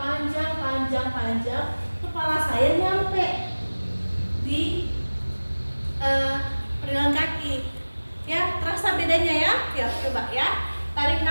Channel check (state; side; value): inverted; both; correlation -1.00